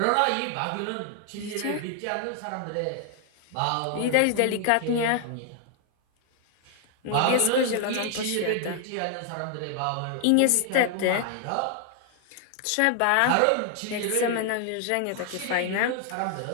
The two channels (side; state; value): both; different; correlation 0.00